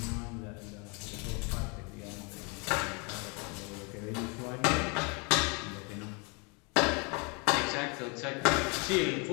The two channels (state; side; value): quieter; right; 32.1 dB